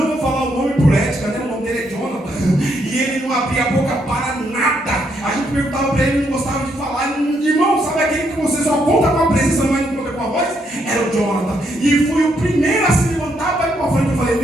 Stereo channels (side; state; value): both; normal; correlation 0.75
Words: vou falar o nome por ética, né? O nome dele é Jonathan, e ele não abria a boca para nada. A gente perguntava para ele, ele não gostava de falar. Irmão, sabe aquele que você só conta com a presença, mas não conta com a voz? Era o Jonathan. E fui o primeiro a se levantar para ir para frente. Eu falei,